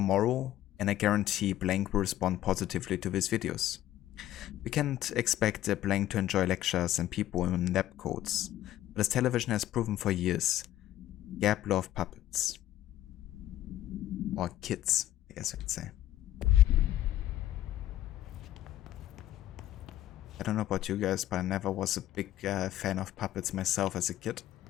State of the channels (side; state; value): right; quieter; 13.5 dB